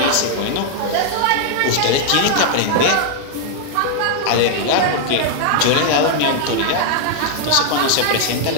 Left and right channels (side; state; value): both; different; correlation 0.00